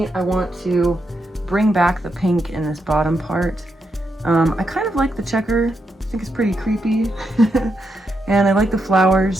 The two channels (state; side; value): normal; both; correlation 0.83